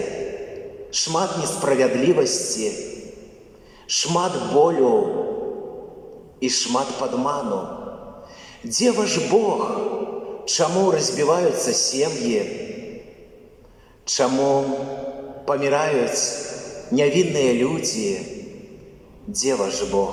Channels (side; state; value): both; identical; correlation 1.00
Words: шмат несправядлівасці, шмат болю і шмат падману? Дзе ваш Бог? Чаму разбіваюцца сем'і? Чаму паміраюць нявінныя людзі? Дзе ваш